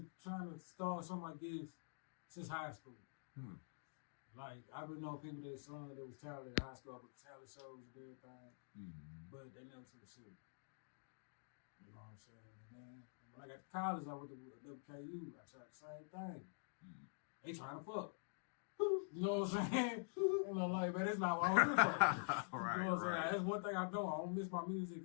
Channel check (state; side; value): silent; right; digital silence